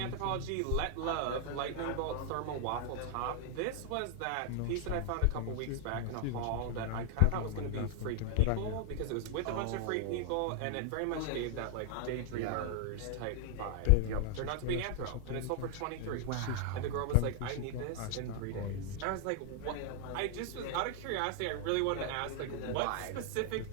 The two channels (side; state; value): both; different; correlation 0.00